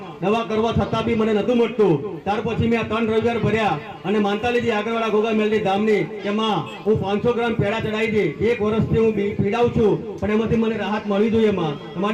દવા કરવા છતાં બી મને નતું મળતું. ત્યાર પછી મેં 3 રવિવાર ભર્યા અને માનતા લીધી આગળવાળા ગોગા મેલની ધામની કે માં હું 500 ગ્રામ પેડા ચડાવી દે. 1 વર્ષથી હું પીડાઉં છું પણ એમાંથી મને રાહત મળવી જોઈએ માં.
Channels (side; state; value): both; identical; correlation 1.00